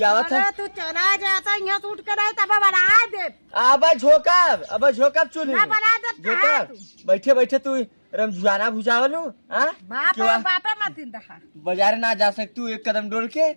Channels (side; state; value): both; inverted; correlation -1.00